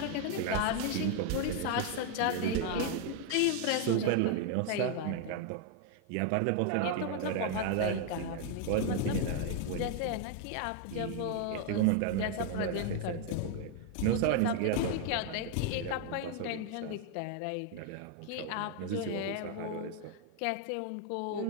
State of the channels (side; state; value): both; different; correlation 0.00